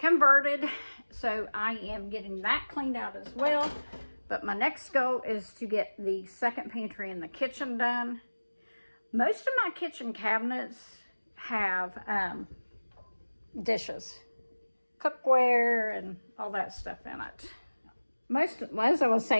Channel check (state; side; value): inverted; both; correlation -1.00